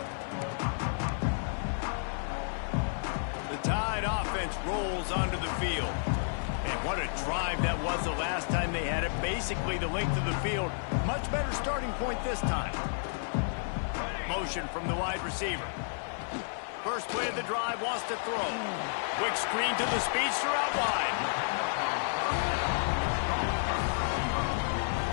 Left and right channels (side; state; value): right; silent; 57 dB below the other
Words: The Tide offense rolls onto the field. And What a drive that was the last time they had it. Basically the length of the field. Much better starting point this time. Motion from the wide receiver. First play of the drive, wants to throw. Quick screen to the speedster out wide.